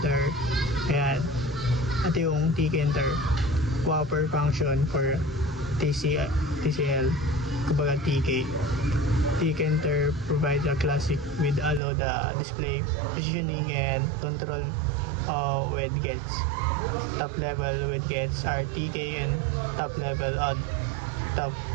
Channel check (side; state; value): left; drops out; at 11.8 s